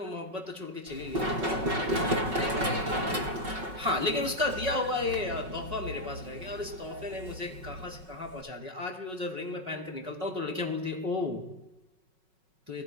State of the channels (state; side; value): late; left; 5.4 ms